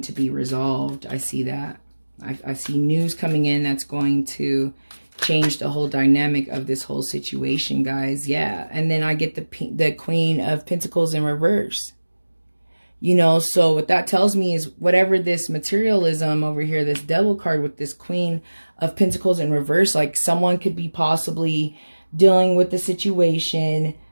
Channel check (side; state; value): both; inverted; correlation -1.00